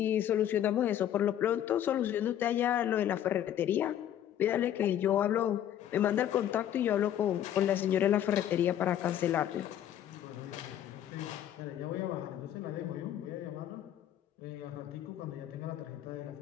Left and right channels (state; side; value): quieter; right; 11.0 dB